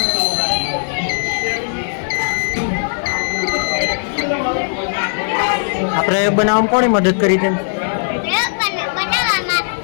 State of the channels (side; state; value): right; silent; 62 dB below the other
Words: આ પ્રયોગ બનાવવામાં કોણે મદદ કરી તેમ? પ્રયોગ બનાવવામાં